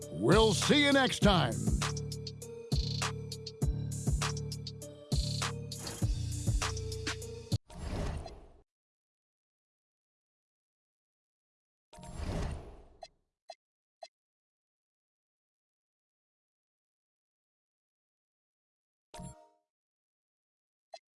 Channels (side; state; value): both; identical; correlation 1.00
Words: We'll see you next time.